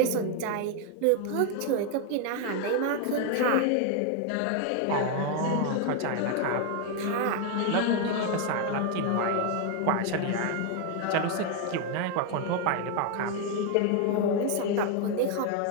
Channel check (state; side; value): different; both; correlation 0.01